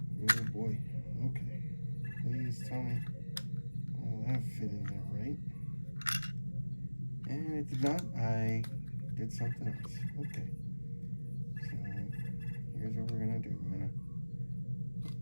Oh boy. Okay. Please tell me all that fit in there right. And it did not. I did something else. Okay. So here's what we're gonna do. I'm gonna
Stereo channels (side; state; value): both; inverted; correlation -1.00